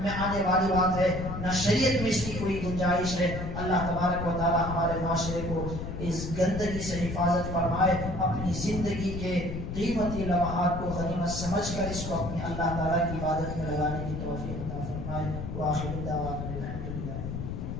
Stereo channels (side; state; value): left; noise; rumble, 5 dB below the sound